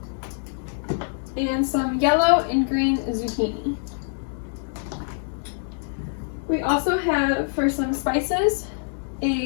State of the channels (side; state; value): right; silent; digital silence